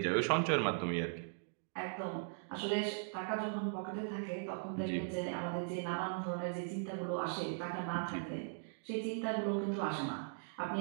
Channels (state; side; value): silent; left; digital silence